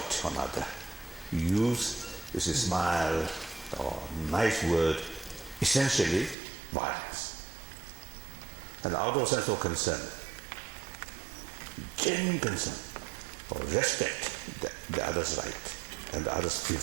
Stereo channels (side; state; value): left; drops out; at 6.4 s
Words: another, use is a smile or nice word, essentially violence. And out of sense of concern, genuine concern, or respect the other's right and the other's